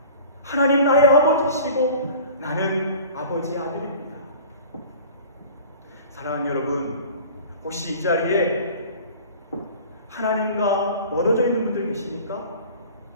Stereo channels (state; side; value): inverted; both; correlation -0.43